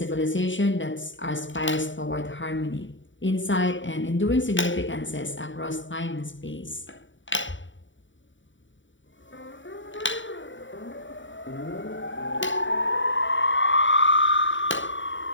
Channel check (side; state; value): right; late; 0.55 ms